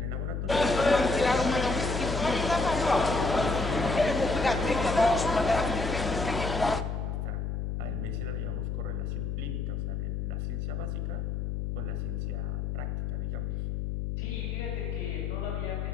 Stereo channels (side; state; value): left; noise; hum, 2 dB below the sound